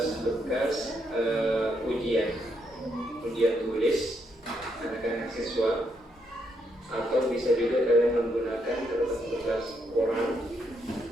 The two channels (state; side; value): normal; both; correlation 0.77